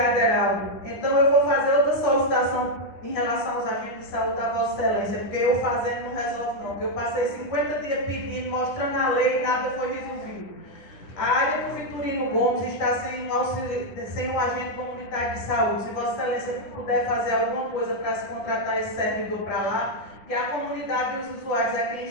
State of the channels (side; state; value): right; late; 10 ms